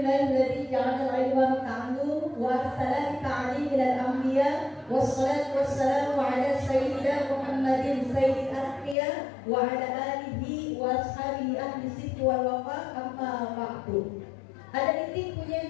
ja'ala al-ilma ta'allum wa arsala ta'lim ila al-anbiya wassalatu wassalamu ala sayyidina Muhammadin sayyidil anbiya wa ala alihi wa ashabihi ahli sidq wal wafa amma ba'du. Ada titik punya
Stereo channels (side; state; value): right; drops out; at 9.0 s